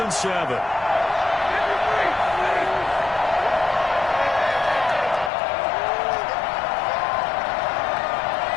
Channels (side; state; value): right; drops out; at 5.3 s